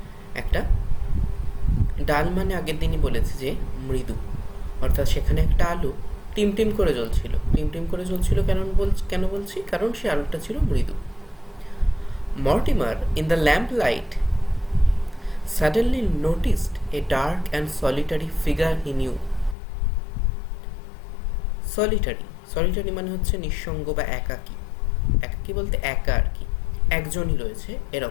একটা ডাল, মানে আগের দিনই বলেছে যে মৃদু, অর্থাৎ সেখানে একটা আলো টিমটিম করে জ্বলছিল। কেন বলছি? কারণ সে আলোটা ছিল মৃদু। Mortimer in the lamp light suddenly noticed a dark and solitary figure he knew. Solitary মানে হচ্ছে নিঃসঙ্গ বা একাকী। একাকী বলতে একা আর কি, একজনই রয়েছে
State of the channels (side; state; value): right; drops out; at 19.6 s